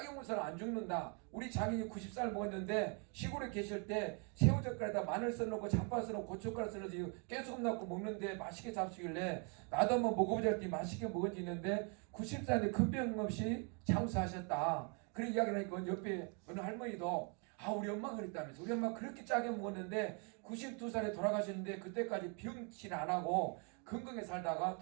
먹어서는 안 죽는다. 우리 장인이 90살 먹었는데 시골에 계실 때 새우젓갈에다 마늘 써놓고 잡파 써놓고 고춧가루 써놓고 깨소금 넣고 먹는데 맛있게 잡수길래 나도 한번 먹어보자 했더니 맛있게 먹어지는데 90살인데 큰 병 없이 장수하셨다. 그런 이야기를 하니까 옆에 어느 할머니도 우리 엄마가 그랬다면서 우리 엄마 그렇게 짜게 먹었는데 92살에 돌아가셨는데 그때까지 병치를 안 하고 건강하게 살다가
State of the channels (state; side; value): quieter; left; 36.8 dB